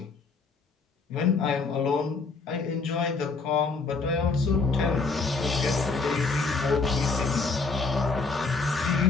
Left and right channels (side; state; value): right; quieter; 4.3 dB